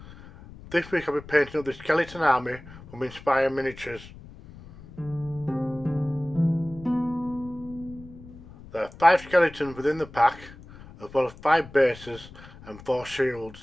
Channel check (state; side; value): noise; left; rumble, 18 dB below the sound